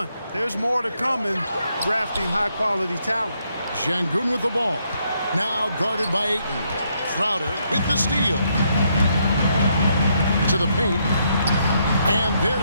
There's more to come in drafting high-quality talent. Şengün with the ball. Now guarded by Ayton. Crowder with the steal. To the paint, and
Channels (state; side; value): inverted; both; correlation -0.75